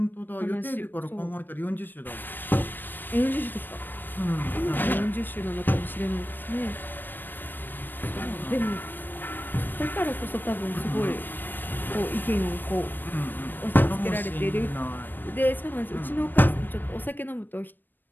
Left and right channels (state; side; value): late; right; 0.092 ms